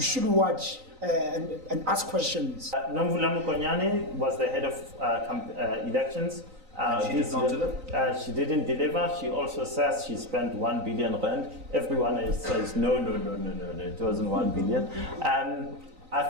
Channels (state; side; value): late; left; 3.9 ms